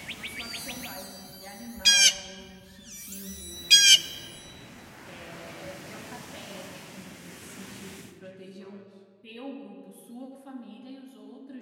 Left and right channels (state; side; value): identical; both; correlation 1.00